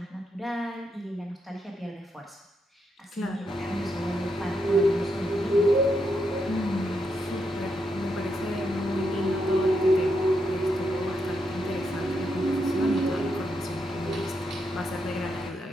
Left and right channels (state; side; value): normal; both; correlation 0.81